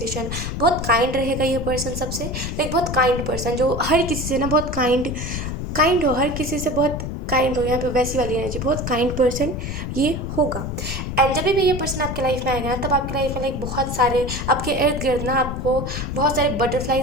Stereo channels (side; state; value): left; noise; rumble, 5 dB below the sound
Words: बहुत काइंड रहेगा ये पर्सन सबसे। लाइक बहुत काइंड पर्सन जो हर किसी से ना बहुत काइंड हो, हर किसी से बहुत काइंड हो। यहाँ पे वैसी वाली एनर्जी, बहुत काइंड पर्सन ये होगा। एंड जब भी ये पर्सन आपके लाइफ में आएगा ना, तब आपके लाइफ में लाइक बहुत सारे आपके इर्द गिर्द ना आपको बहुत सारे